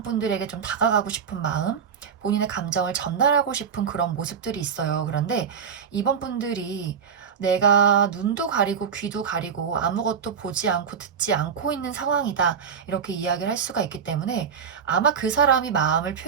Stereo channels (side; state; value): left; quieter; 6.9 dB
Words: 분들에게 좀 다가가고 싶은 마음, 본인의 감정을 전달하고 싶은 그런 모습들이 있어요. 그런데 이번 분들이 내가 눈도 가리고 귀도 가리고 아무것도 보지 않고 듣지 않고 있는 상황이다. 이렇게 이야기를 할 수가 있기 때문에 아마 그 사람이 마음을